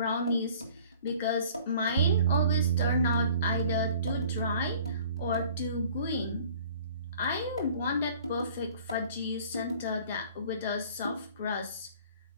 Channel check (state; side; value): inverted; both; correlation -0.51